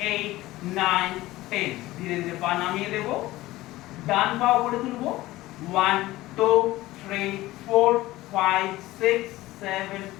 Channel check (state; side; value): quieter; right; 17.5 dB